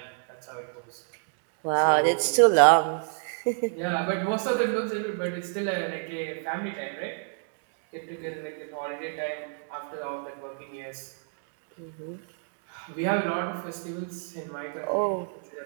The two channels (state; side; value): silent; left; digital silence